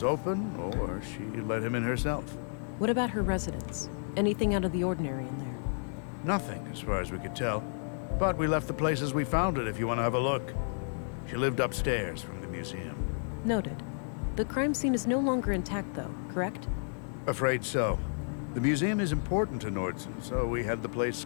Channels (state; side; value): silent; right; digital silence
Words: open or she let him in herself. What about her residence? Anything out of the ordinary in there? Nothing, as far as we could tell. But we left the place as we found it if you want to have a look. She lived upstairs from the museum. Noted. The crime scene is no longer intact, though, correct? Afraid so. The museum is important to Nordson, so we had the place